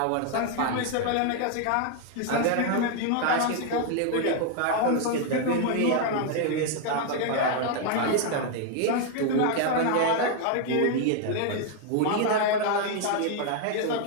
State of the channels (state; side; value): different; both; correlation 0.00